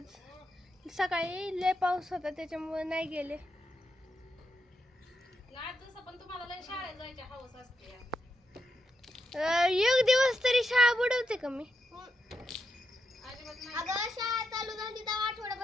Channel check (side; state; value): both; normal; correlation 0.84